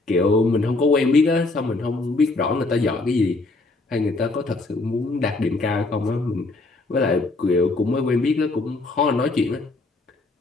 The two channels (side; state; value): right; quieter; 3.3 dB